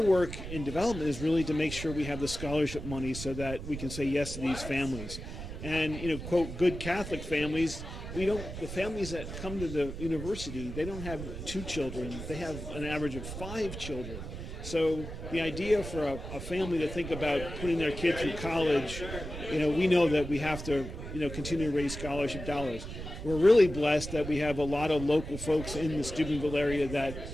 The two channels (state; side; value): noise; right; rumble, 9 dB below the sound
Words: work in development is really to make sure we have the scholarship money so that we can say yes to these families. And quote, good Catholic families. The families that come to the university, they don't have 2 children. They have an average of 5 children. So the idea for a family to think about putting their kid through college, we know that we have to, continue to raise scholarship dollars. We're really blessed that we have a lot of local folks in the Steubenville area